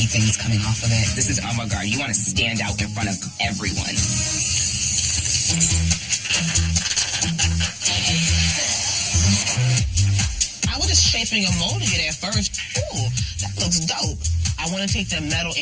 things coming off of it. This is avant-garde. You want to stand out in front of everyone. I was just shaping a mold it at first. Ooh, that looks dope. I want to take the metal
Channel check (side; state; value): both; identical; correlation 1.00